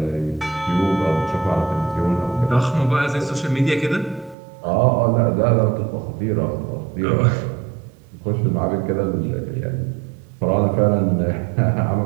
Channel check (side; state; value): left; drops out; at 4.4 s